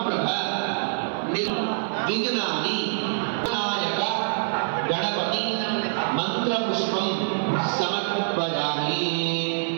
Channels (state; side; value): silent; left; digital silence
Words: विघ्नानि विनायक गणपति మంత్రపుష్పం సమర్పయామి.